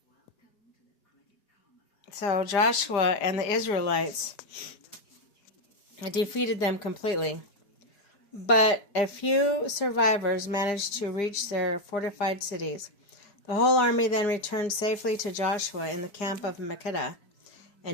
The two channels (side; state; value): right; late; 4.9 ms